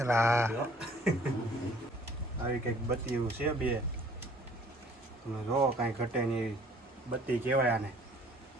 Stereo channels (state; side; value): normal; both; correlation 0.56